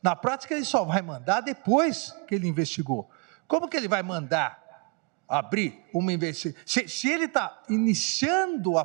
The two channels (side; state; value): left; quieter; 31.9 dB